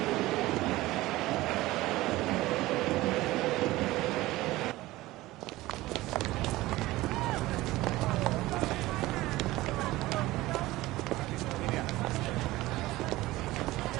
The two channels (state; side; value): quieter; left; 18.2 dB